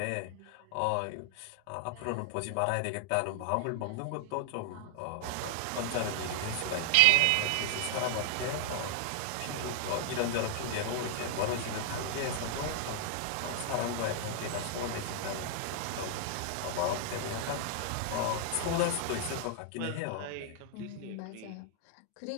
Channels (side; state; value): both; different; correlation 0.00